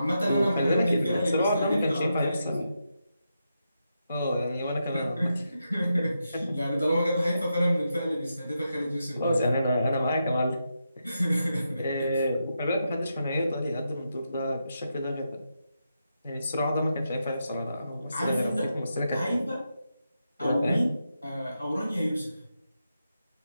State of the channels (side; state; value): both; inverted; correlation -0.85